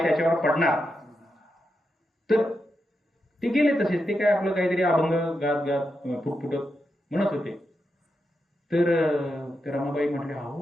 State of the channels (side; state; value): both; normal; correlation 0.86